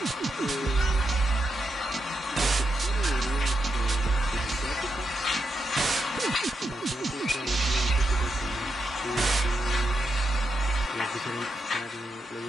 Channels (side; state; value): both; normal; correlation 0.84